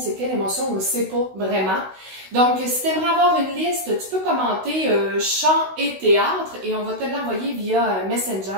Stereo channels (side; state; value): left; late; 16 ms